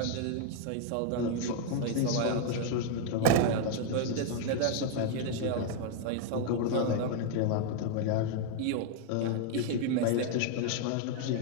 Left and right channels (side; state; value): both; different; correlation 0.00